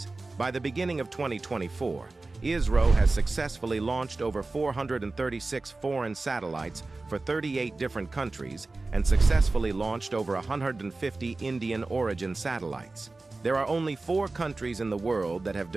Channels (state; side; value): quieter; left; 3.4 dB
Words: By the beginning of 2024, ISRO has successfully launched over 436 foreign satellites for 38 different countries and successfully launched over 150 Indian origin satellites. There are only 4 countries in the world that have